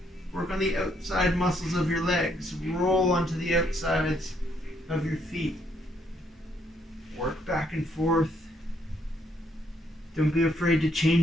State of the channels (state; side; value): normal; both; correlation 0.71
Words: Work on the outside muscles of your legs. Roll onto the outsides of your feet. Work back and forth. Don't be afraid to